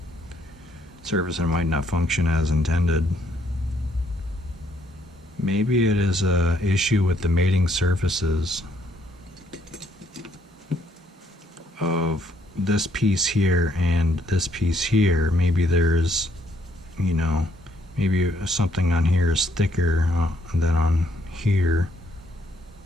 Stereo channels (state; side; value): normal; both; correlation 0.70